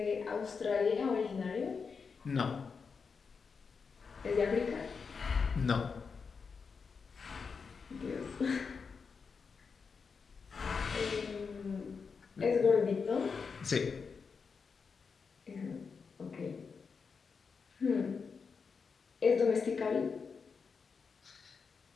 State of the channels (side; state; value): right; quieter; 5.4 dB